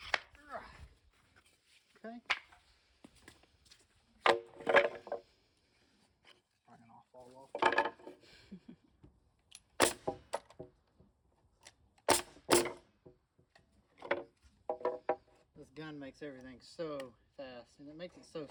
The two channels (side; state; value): both; identical; correlation 1.00